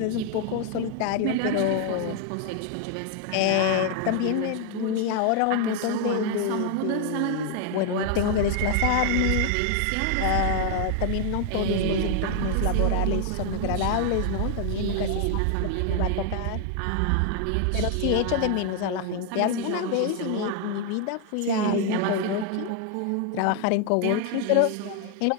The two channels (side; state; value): both; different; correlation 0.00